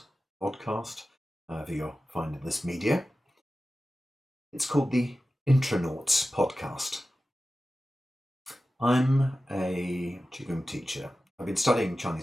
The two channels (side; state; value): both; normal; correlation 0.94